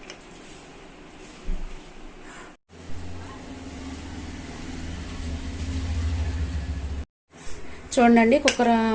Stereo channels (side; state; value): both; identical; correlation 1.00